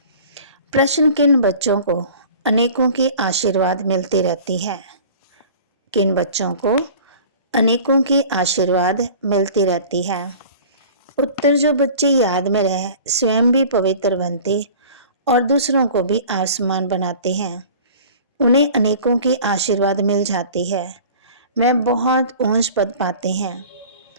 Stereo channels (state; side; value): inverted; both; correlation -0.43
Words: प्रश्न, किन बच्चों को अनेकों की आशीर्वाद मिलती रहती है? किन बच्चों को अनेकों की आशीर्वाद मिलती रहती है? उत्तर, जो बच्चे याद में रहे, स्वयं भी पवित्र बनते और दूसरों को भी आसमान बनाते हैं, उन्हें अनेकों की आशीर्वाद मिल जाती है। वे बहुत ऊंच पद पाते हैं।